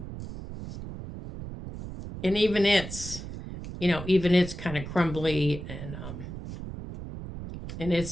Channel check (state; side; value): noise; right; rumble, 10 dB below the sound